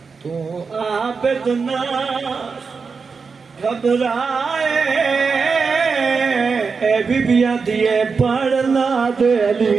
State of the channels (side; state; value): left; quieter; 5.1 dB